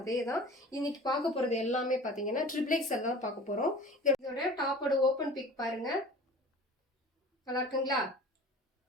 அதே தான். இன்னைக்கு பார்க்க போகிறது எல்லாமே பார்த்தீங்கன்னா ட்ரிபிள் எக்ஸ்எல் தான் பார்க்க போகிறோம். இதோட டாப்போட ஓப்பன் பிக் பாருங்கள், நல்லா இருக்குங்களா?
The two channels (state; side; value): normal; both; correlation 0.41